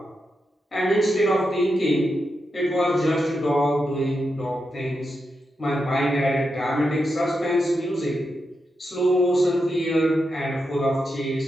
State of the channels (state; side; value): normal; both; correlation 0.86